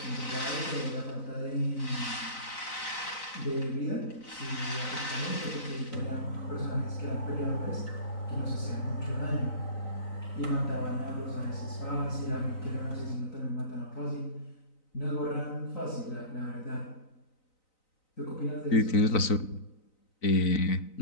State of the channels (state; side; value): late; right; 3.9 ms